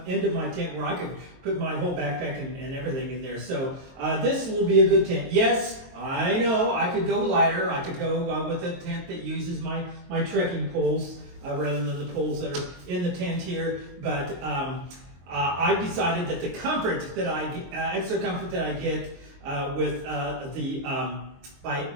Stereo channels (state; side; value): late; left; 22 ms